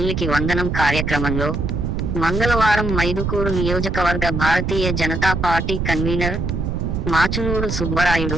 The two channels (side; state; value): right; noise; rumble, 2 dB below the sound